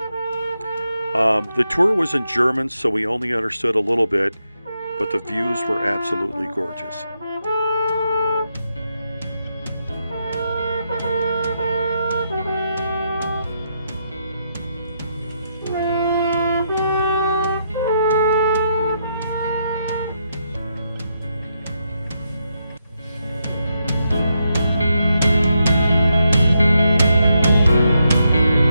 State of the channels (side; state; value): both; inverted; correlation -0.81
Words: The tour was in German, so we only understood a little bit, but the views were absolutely gorgeous.